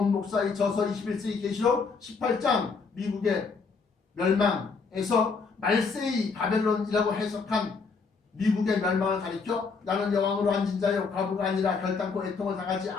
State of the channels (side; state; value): right; quieter; 4.8 dB